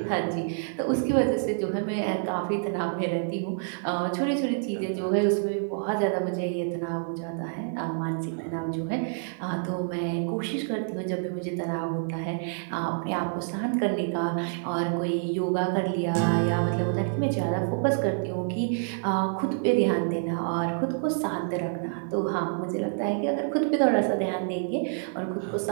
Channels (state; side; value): silent; left; 60 dB below the other